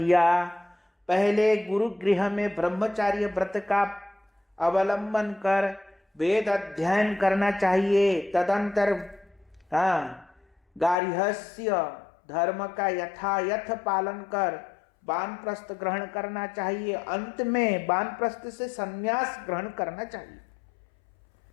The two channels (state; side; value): drops out; right; at 11.0 s